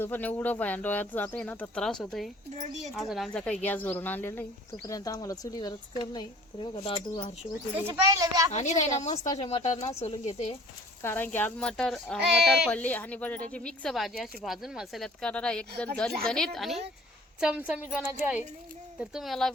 पण एवढं भयान डोळ्यात जातंय ना तर त्रास होतोय. अजून आमचा काही गॅस भरून आणलेला नाही, तोपर्यंत आम्हाला चुलीवरच करणं. तर बघा दादू हर्षू आणि नाही ना मस्त असे मटर ना सोलून घेते, कारण की आज मटर पडली आणि बटाट्याची मिक्स भाजी अशी भाजून मसाल्यात करणार एकदम झणझणीत आणि चमचमीत बनायची आहे. तर तुम्हाला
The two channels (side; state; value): both; normal; correlation 0.50